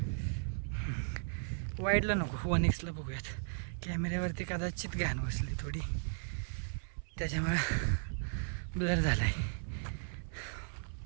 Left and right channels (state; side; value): silent; left; 54 dB below the other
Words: वाईडला नको, 1x बघूयात. कॅमेऱ्यावरती कदाचित घाण बसली थोडी, त्याच्यामुळं ब्लर झाला आहे.